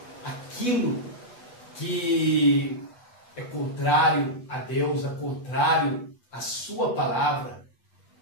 que é contrário a Deus, é contrário à sua palavra.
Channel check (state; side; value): late; right; 8.0 ms